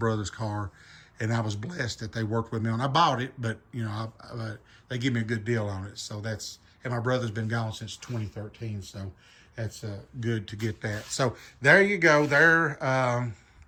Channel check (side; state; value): both; identical; correlation 1.00